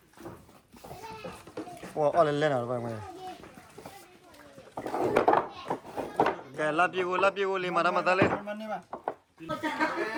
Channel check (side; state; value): both; identical; correlation 1.00